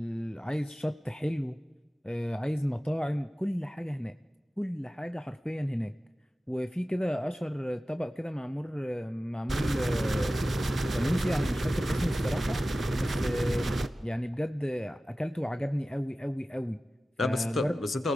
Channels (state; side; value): normal; both; correlation 0.96